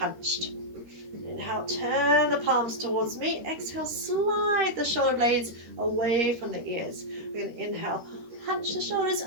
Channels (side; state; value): left; late; 13 ms